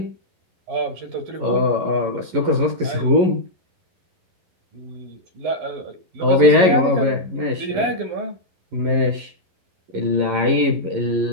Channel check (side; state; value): left; late; 11 ms